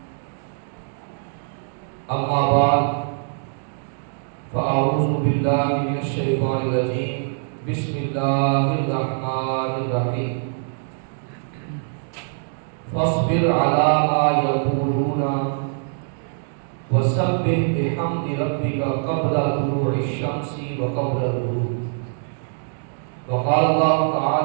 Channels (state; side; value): silent; left; digital silence